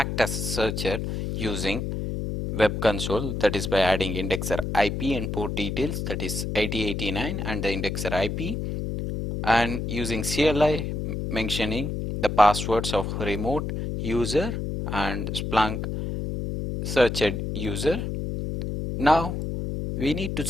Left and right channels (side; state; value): left; noise; hum, 3 dB below the sound